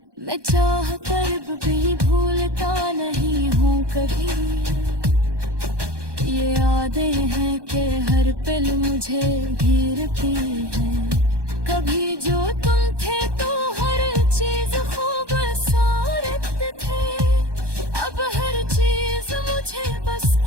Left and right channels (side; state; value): left; late; 1.2 ms